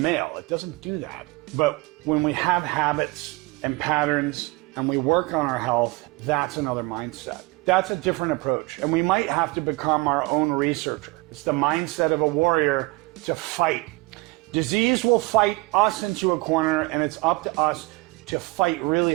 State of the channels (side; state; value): left; quieter; 23.7 dB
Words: It doesn't do that. But when we have habits and patterns and we work on our health, that's another mindset. That's a different approach. And we might have to become our own researcher. It's the mindset of a warrior to fight. Disease will fight us into a corner, and it's up to us to fight really